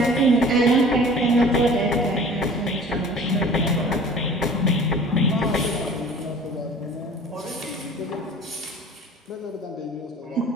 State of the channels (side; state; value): both; normal; correlation 0.45